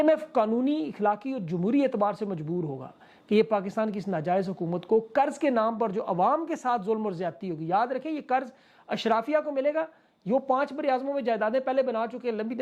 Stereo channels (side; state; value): both; identical; correlation 1.00